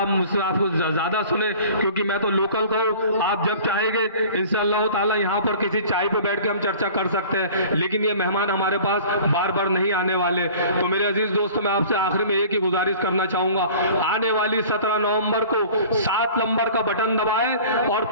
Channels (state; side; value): inverted; both; correlation -0.45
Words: ज्यादा सुने क्योंकि मैं तो लोकल का हूं। आप जब चाहेंगे इंशाअल्लाह ताला यहाँ पर किसी चाय पे बैठ के हम चर्चा कर सकते हैं, लेकिन ये मेहमान हमारे पास बार बार नहीं आने वाले। तो मेरे अजीज दोस्तों, मैं आपसे आखिरी में एक ही गुजारिश करना चाहूंगा, आने वाली 17 नवंबर को 7 नंबर का बटन दबाएं और